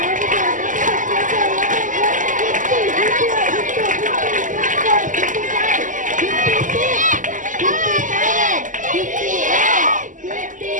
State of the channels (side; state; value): left; late; 0.38 ms